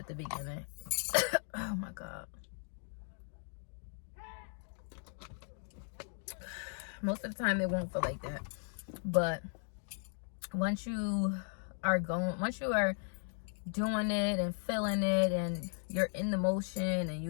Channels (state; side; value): silent; right; 53 dB below the other